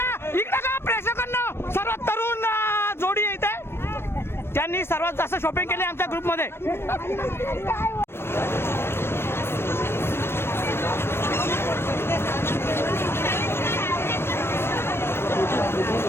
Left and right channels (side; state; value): right; late; 0.12 ms